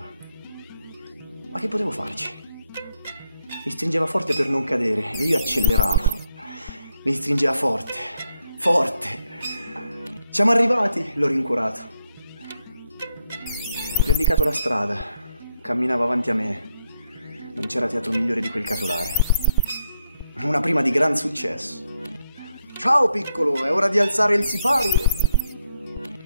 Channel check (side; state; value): both; inverted; correlation -0.77